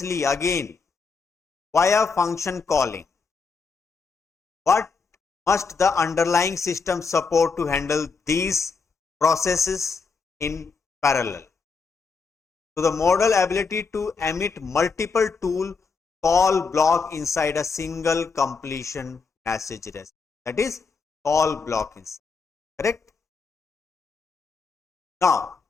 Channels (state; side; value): quieter; right; 4.9 dB